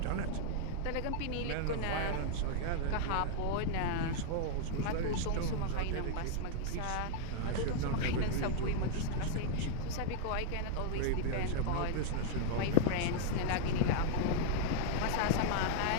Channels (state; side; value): different; both; correlation 0.00